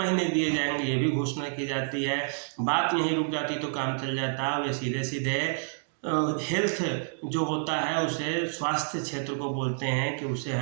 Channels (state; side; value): silent; left; digital silence